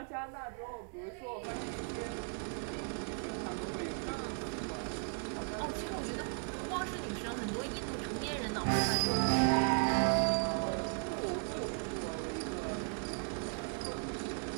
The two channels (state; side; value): silent; left; 53 dB below the other